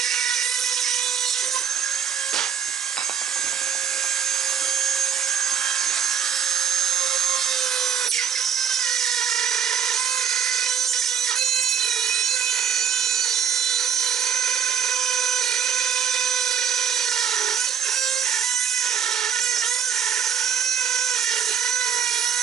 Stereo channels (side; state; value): left; quieter; 8.0 dB